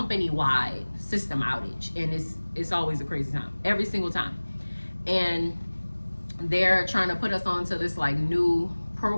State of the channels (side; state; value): both; inverted; correlation -1.00